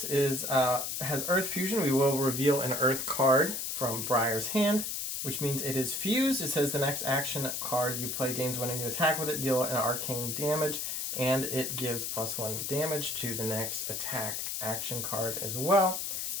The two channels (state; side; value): noise; left; hiss, 3 dB below the sound